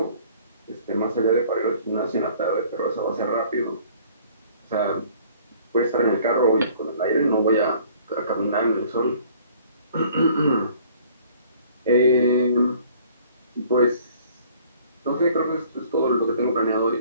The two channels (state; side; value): inverted; both; correlation -0.55